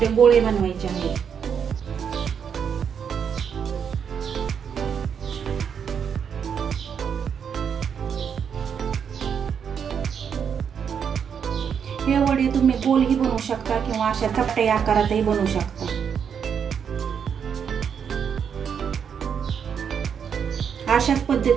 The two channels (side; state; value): left; quieter; 7.3 dB